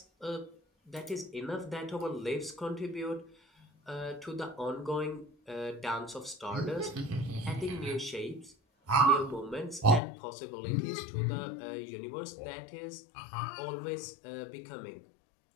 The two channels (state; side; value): drops out; right; at 10.0 s